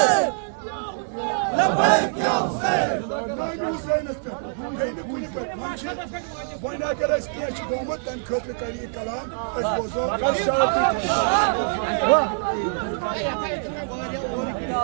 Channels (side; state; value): left; silent; digital silence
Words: लबैक या हुसैन वरना अगर इस केस गोमत तन खतर तरी कलाम इस बोझो